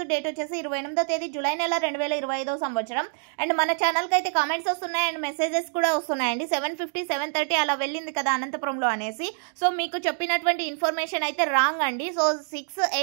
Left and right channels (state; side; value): silent; left; 61 dB below the other